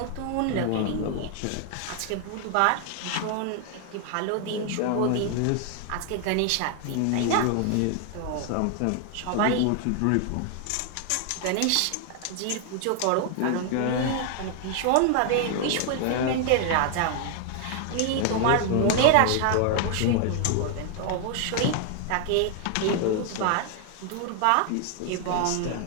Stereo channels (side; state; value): both; different; correlation 0.00